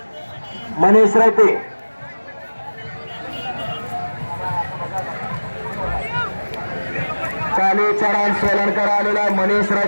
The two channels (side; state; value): both; inverted; correlation -1.00